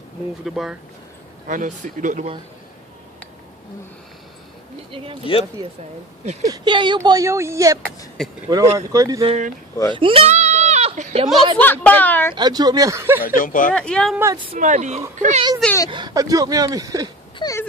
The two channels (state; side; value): normal; both; correlation 0.33